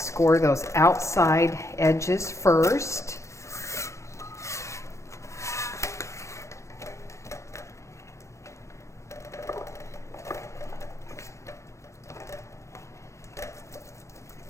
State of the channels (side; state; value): right; late; 0.14 ms